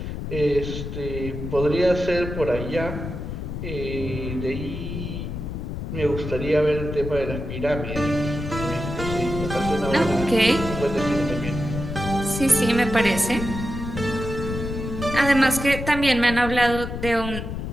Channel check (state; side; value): noise; left; rumble, 6 dB below the sound